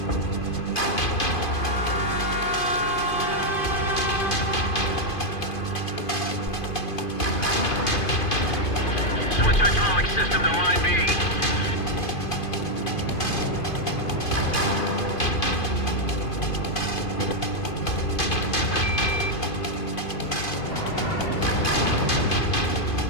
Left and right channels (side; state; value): right; late; 2.5 ms